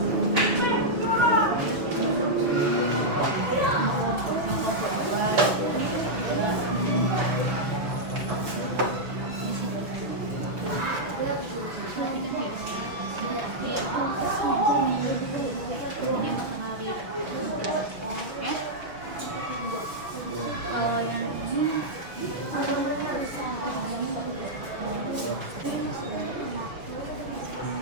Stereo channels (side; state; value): left; late; 6.2 ms